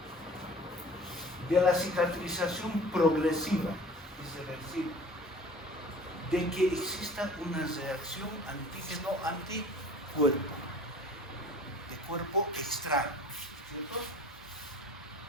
de la cicatrización progresiva, irreversible, de que exista una reacción antígeno-anticuerpo, de cuerpo extraño, ¿cierto?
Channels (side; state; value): both; normal; correlation 0.45